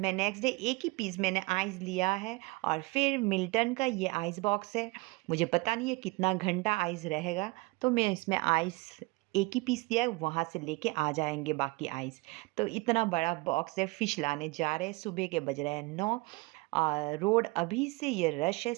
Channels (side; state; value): left; quieter; 24.7 dB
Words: नेक्स्ट डे एक ही पीस मैंने आइस लिया है। और फिर मिल्टन का ये आइस बॉक्स है। मुझे पता नहीं है कितना घंटा आइस रहेगा, तो मैं इसमें आइस एक ही पीस दिया है, वहाँ से लेके आ जाएंगे बाकी आइस। तो इतना बड़ा बॉक्स है। फ़िश लाने जा रहे हैं, सुबह के बज रहे हैं 9। रोड अभी से ये रश है,